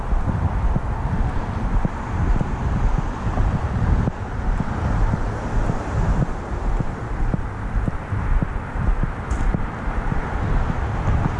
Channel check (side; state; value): both; identical; correlation 1.00